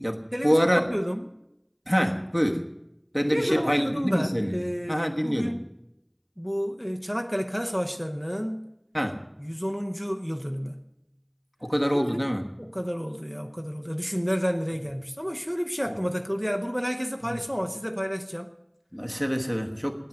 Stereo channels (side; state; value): both; identical; correlation 1.00